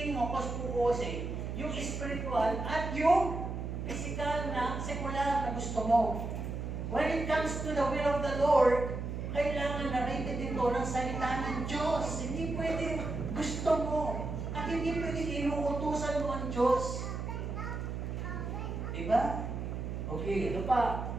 mapos-pukosin yung spiritual at yung physical na sekular na gusto mo. When it comes to the will of the Lord, kailangan na rated ito ng salita ng Diyos. Hindi pwedeng gusto mo. At hindi pwedeng inuutusan mo ang Diyos. Diba? Okay, ano pa?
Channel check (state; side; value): noise; right; hum, 4 dB below the sound